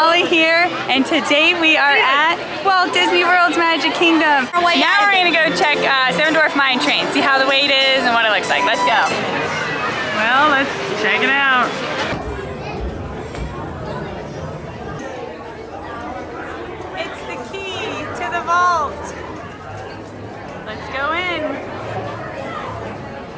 here, and today we are at Walt Disney World's Magic Kingdom. Now we're gonna go check Seven Dwarf Mine Train, see how the wait is and what it looks like. Let's go. Well, let's check it out. It's the key to the vault. Let's go in.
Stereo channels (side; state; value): both; identical; correlation 1.00